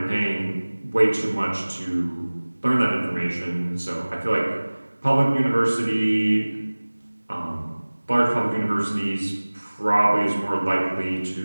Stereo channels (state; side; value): inverted; both; correlation -1.00